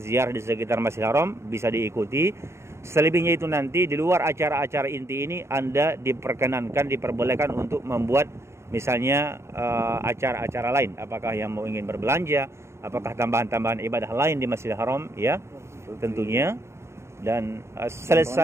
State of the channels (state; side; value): late; left; 0.13 ms